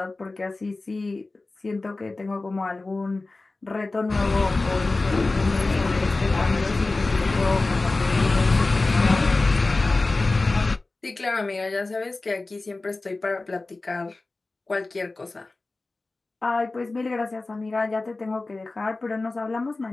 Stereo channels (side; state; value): right; quieter; 3.3 dB